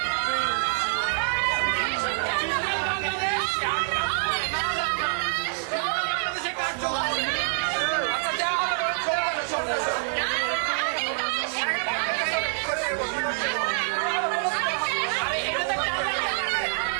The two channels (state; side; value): silent; left; digital silence